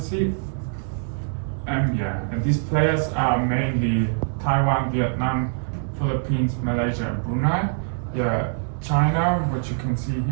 And these players are mainly Taiwan, Vietnam, Philippines, Malaysia, and Brunei. China, which you can see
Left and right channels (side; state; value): left; silent; digital silence